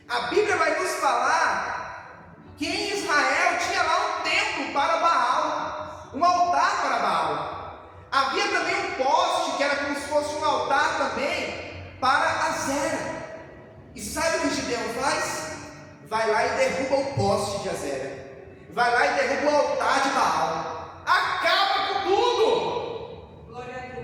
A Bíblia vai nos falar que em Israel tinha lá um templo para Baal, um altar para Baal. Havia também um poste que era como se fosse um altar também para Azera. E sabe o que Gideão faz? Vai lá e derruba o poste de Azera. Vai lá e derruba o altar de Baal. Acaba com tudo. Glória a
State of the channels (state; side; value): identical; both; correlation 1.00